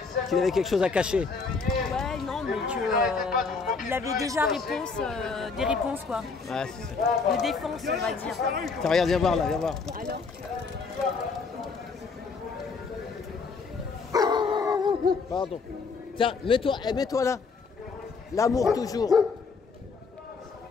Qu'il avait quelque chose à cacher. Ouais, non, mais que... il avait déjà des réponses, quoi. Ouais, c'est ça. De défense, on va dire. Tiens, regarde, viens voir là, viens voir. Alors Pardon. Tiens, mets-toi là. L'amour toujours.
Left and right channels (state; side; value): quieter; right; 4.7 dB